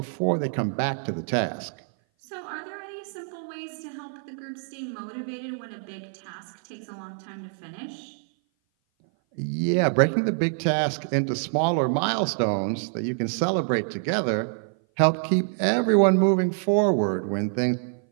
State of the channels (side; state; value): left; silent; 57 dB below the other